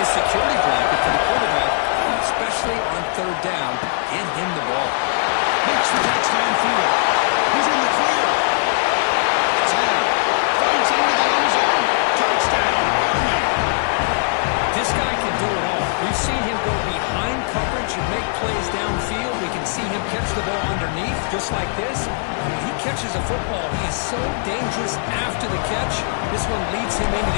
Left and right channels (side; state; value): right; silent; digital silence